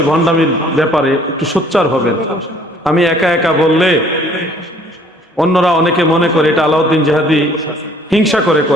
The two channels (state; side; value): normal; both; correlation 0.58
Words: ভণ্ডামির ব্যাপারে একটু সোচ্চার হবেন। আমি একা একা বললে অন্যরা অনেকে মনে করে এটা আলাউদ্দিন জিহাদি হিংসা